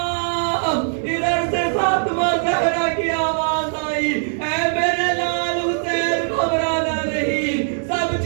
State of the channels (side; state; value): left; silent; digital silence